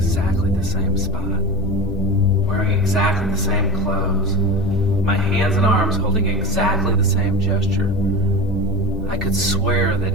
the same spot, wearing exactly the same clothes, my hands and arms holding exactly the same gesture. I could swear that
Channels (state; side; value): noise; left; hum, 8 dB below the sound